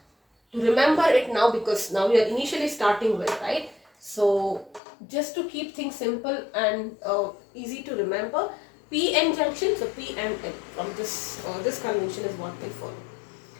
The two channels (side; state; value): right; drops out; at 4.8 s